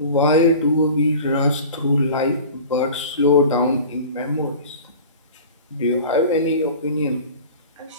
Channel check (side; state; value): both; inverted; correlation -0.39